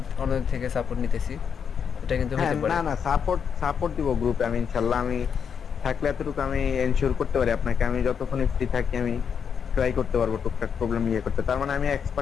অন্য থেকে সাপোর্ট নিতেছি, এটা কিন্তু হ্যাঁ হইতে না পারে। না, সাপোর্ট সাপোর্ট দিব গ্রুপে আমি ইনশাল্লাহ, আমি থাকলে এতটুকু আমি এনশিওর করতে পারি আপনাকে, আমি যতক্ষণ ফ্রি থাকি আমি ট্রাই করতে পারবো টুকটাক প্রবলেম ইয়ে করতে। তার মানে আমি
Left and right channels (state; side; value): quieter; right; 7.1 dB